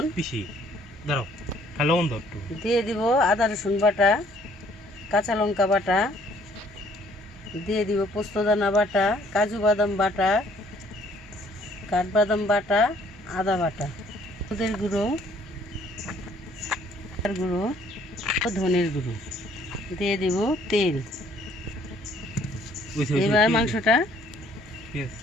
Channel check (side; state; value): both; normal; correlation 0.61